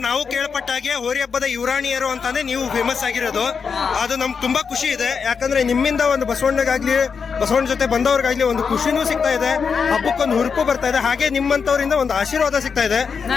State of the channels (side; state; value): right; quieter; 5.9 dB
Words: ನಾವು ಕೇಳ್ಪಟ್ಟಾಗೆ ಹೋರಿ ಹಬ್ಬದ ಯುವರಾಣಿಯರು ಅಂತಾನೆ ನೀವು ಫೇಮಸ್ ಆಗಿರೋದು. ಅದು ನಮ್ಗೆ ತುಂಬಾ ಖುಷಿ ಇದೆ. ಯಾಕಂದ್ರೆ ನಿಮ್ಮಿಂದ ಒಂದು ಬಸವಣ್ಣಗಾಗ್ಲಿ, ಬಸವಣ್ಣ ಜೊತೆ ಬಂದವ್ರಿಗಾಗ್ಲಿ ಒಂದು ಖುಷಿನೂ ಸಿಗ್ತಾ ಇದೆ, ಹಬ್ಬಕ್ಕೊಂದು ಹುರುಪು ಬರ್ತಾ ಇದೆ. ಹಾಗೆ ನಿಮ್ಮಂತವರಿಂದ ಒಂದು ಆಶೀರ್ವಾದ ಸಿಗ್ತಾ ಇದೆ.